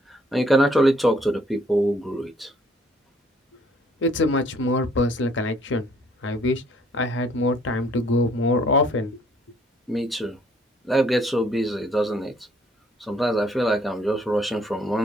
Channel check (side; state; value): both; normal; correlation 0.63